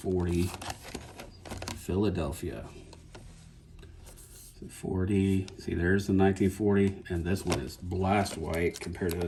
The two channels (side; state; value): both; identical; correlation 1.00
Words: Philadelphia. 40, see, there's the 1940, and this one is blast white compared to